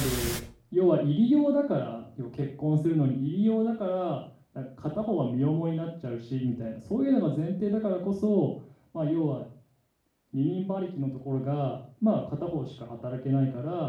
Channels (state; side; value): identical; both; correlation 1.00